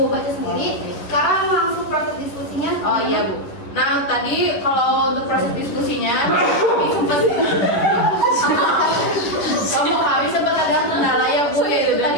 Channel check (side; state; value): right; late; 10 ms